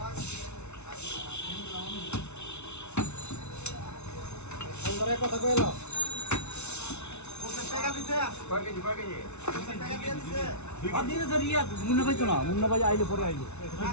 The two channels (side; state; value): right; late; 0.81 ms